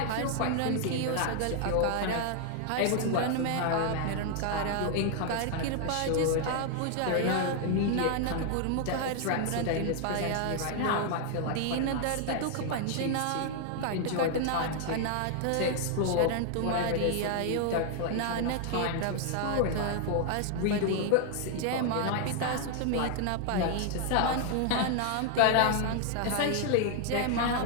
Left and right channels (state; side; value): different; both; correlation 0.00